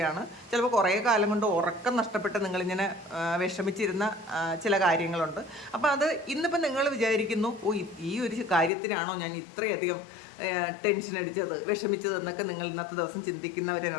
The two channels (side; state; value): right; drops out; at 8.7 s